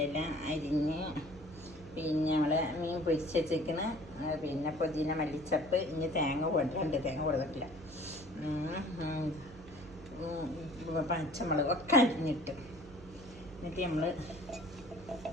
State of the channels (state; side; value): noise; right; hum, 18 dB below the sound